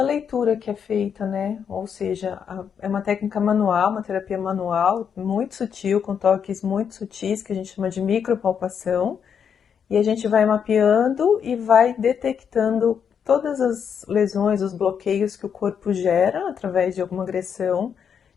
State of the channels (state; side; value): quieter; right; 7.4 dB